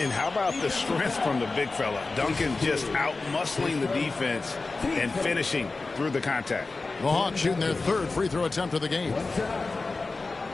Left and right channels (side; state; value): right; quieter; 3.7 dB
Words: how about the strength from the big fella? Duncan just out-muscling the defense and finishing through the contact. The Hawks shooting their 3rd free throw attempt of the game.